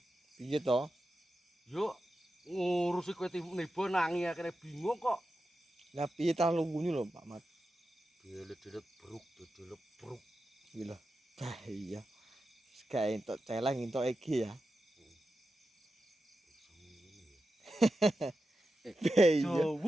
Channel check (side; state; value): both; normal; correlation 0.90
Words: Piye to? Yo ngurusi kowe tiba nangi akhirnya bingung kok. Lah piye ta lunggune lho Pak Mat. Delet-delet bruk. Gila. Bahaya. Gak entuk celeng entuk iki ya. Bahaya.